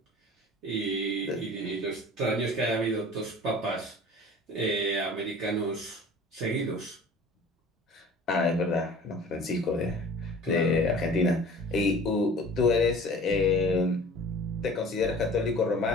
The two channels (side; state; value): both; normal; correlation 0.44